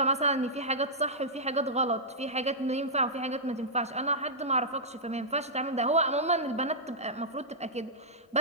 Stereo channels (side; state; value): both; normal; correlation -0.12